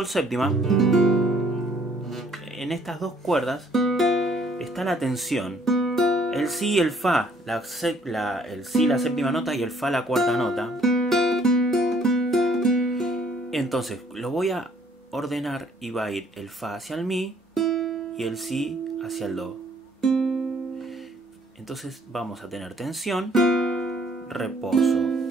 séptima, en estas dos cuerdas está la tensión. El Si y el Fa, el Si la séptima nota y el Fa la cuarta nota. Entonces lo voy a ordenar y va a ir el Fa hacia el Mi y el Si hacia el Do. Entonces vamos a tener tensión,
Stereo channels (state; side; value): normal; both; correlation 0.62